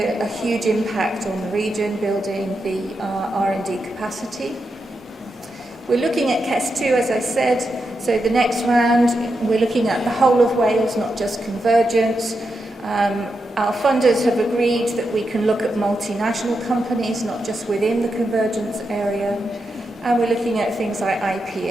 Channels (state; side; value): normal; both; correlation 0.86